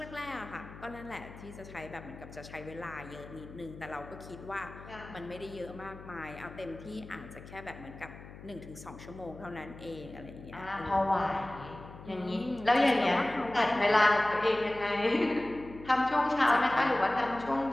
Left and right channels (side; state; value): left; noise; hum, 15 dB below the sound